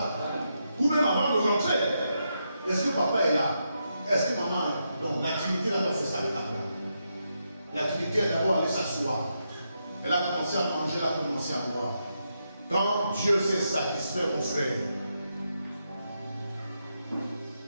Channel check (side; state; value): both; inverted; correlation -0.83